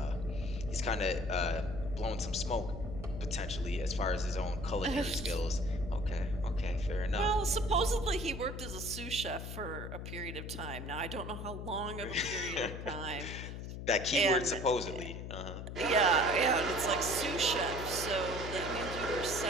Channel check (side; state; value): left; noise; hum, 7 dB below the sound